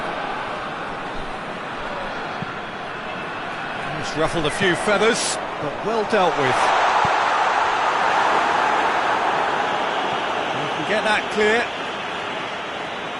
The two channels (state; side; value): identical; both; correlation 1.00